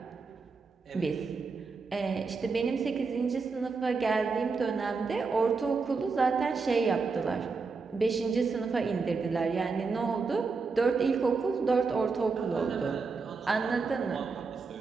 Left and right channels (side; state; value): left; quieter; 4.6 dB